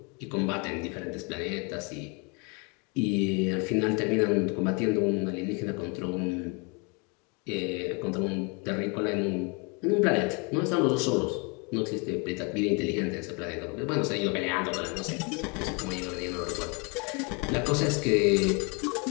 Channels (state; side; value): quieter; right; 32.4 dB